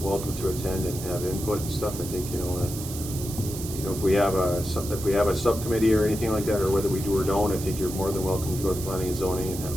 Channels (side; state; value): right; noise; hiss, 10 dB below the sound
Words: to attend and have input and stuff. I think, if we have a subcommittee or anything like that, or whether we do or don't, I think you're more than welcome to go to planning and zoning and have,